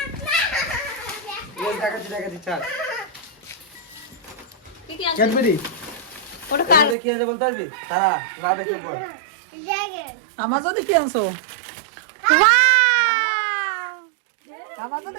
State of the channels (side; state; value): left; drops out; at 7.0 s